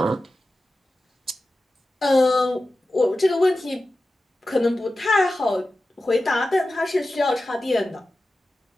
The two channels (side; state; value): both; normal; correlation 0.94